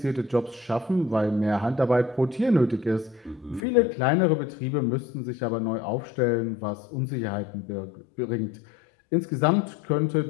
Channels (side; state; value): right; drops out; at 3.6 s